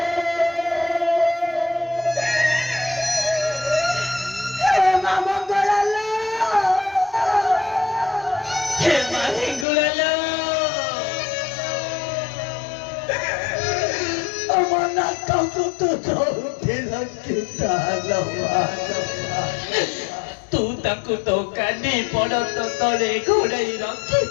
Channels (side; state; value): right; drops out; at 9.7 s